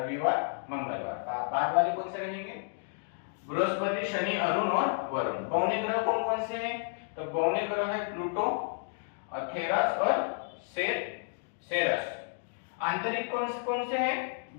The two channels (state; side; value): silent; right; digital silence